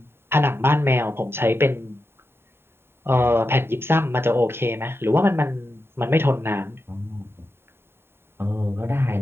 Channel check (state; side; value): late; left; 0.11 ms